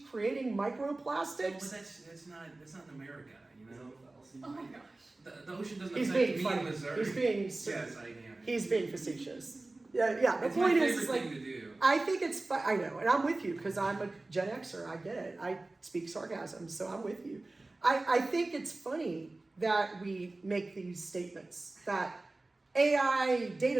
creating But microplastics. that's not in America, you know. Oh my gosh. The ocean doesn't He's affect being me funny. in Missouri. He's being Yes, I am. He's being facetious. Yeah. The It's my point favorite is like, thing to do. I think it's fun. I know, and I'm with you because I'm a Gen Xer. I get it. I speak sarcasm, so I'm with you. I think it's funny that we make these statements that AI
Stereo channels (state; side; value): quieter; left; 3.0 dB